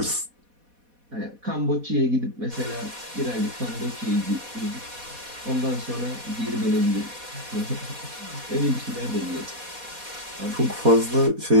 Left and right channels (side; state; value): left; late; 4.1 ms